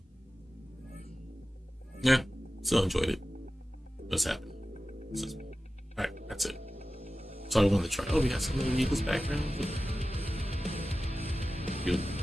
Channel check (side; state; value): both; normal; correlation 0.95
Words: yeah, Still enjoyed it. What's happening? All right, that's it. So I wanted to try. Oh, we got some of the Eagles background.